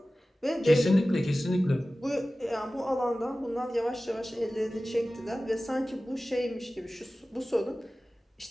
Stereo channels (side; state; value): both; normal; correlation 0.96